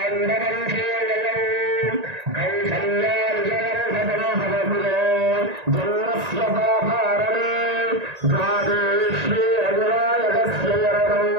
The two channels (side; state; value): left; late; 1.9 ms